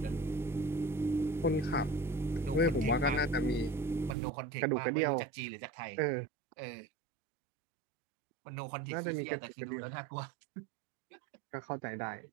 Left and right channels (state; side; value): drops out; left; at 4.2 s